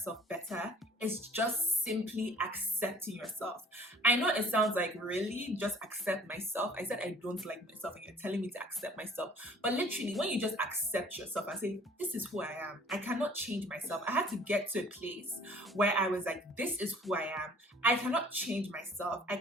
better is just simply accepting yourself. I know it sounds like, really, just accept myself? I said I don't like myself and you're telling me to accept myself. But literally, when you just accept yourself and say, this is who I am, I cannot change myself. I had to get to a place where I was like, this is who I am. I cannot change myself. I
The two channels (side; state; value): both; normal; correlation 0.53